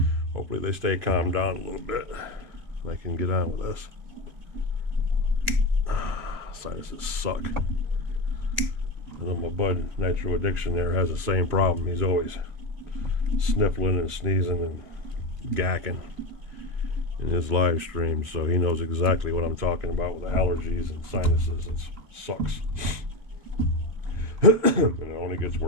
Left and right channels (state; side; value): late; left; 2.8 ms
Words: hopefully they stay calmed down a little bit and I can get on with this. Sinuses suck. I know my bud Nitro Addiction there has the same problem. He's always sniffling and sneezing and gacking. in his live stream, so he knows exactly what I'm talking about with allergies and sinuses. It sucks. And it only gets